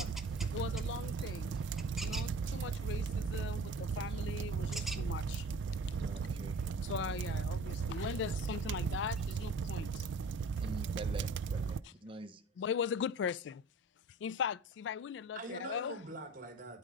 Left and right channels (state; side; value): normal; both; correlation 0.43